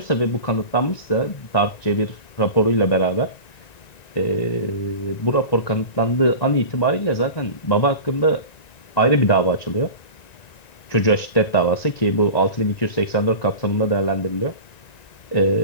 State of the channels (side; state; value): right; late; 1.9 ms